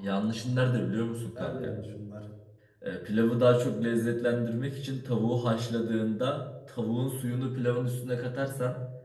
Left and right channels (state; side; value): identical; both; correlation 1.00